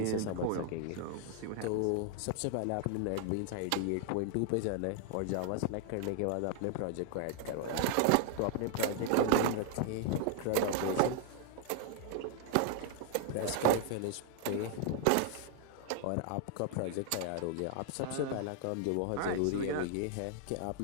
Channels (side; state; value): both; different; correlation 0.00